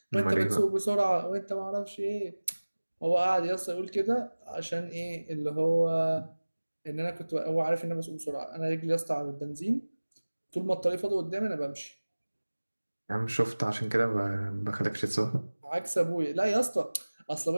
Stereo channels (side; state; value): both; inverted; correlation -1.00